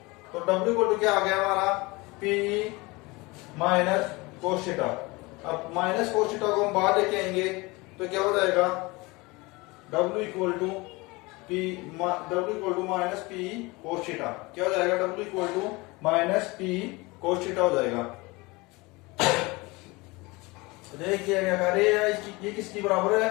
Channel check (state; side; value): quieter; right; 24.0 dB